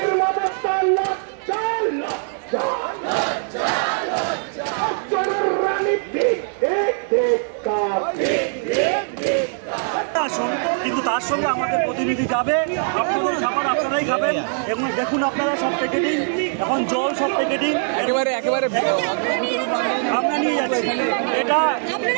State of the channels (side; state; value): left; silent; 65 dB below the other